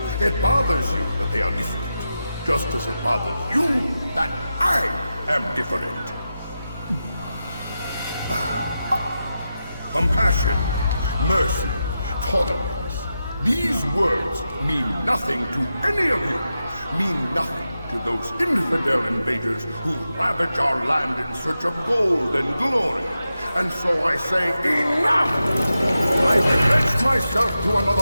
It bothers you that they are different, just as it bothers you that I am different. Compassion, mercy, tolerance. These words mean nothing to any of you. Mean nothing to those infidel invaders who ravage our land in search of gold and glory. And so I say, enough! I pledge myself to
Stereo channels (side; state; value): both; inverted; correlation -0.89